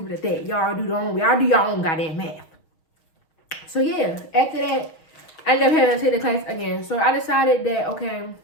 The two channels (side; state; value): right; late; 6.3 ms